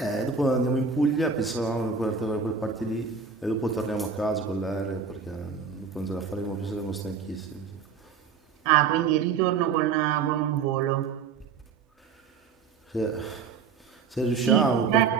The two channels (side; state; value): left; quieter; 5.8 dB